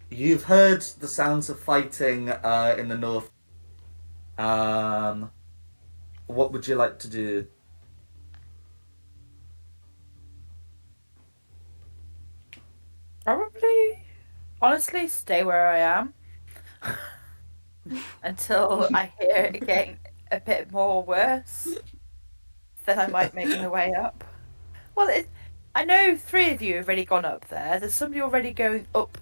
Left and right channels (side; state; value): both; inverted; correlation -1.00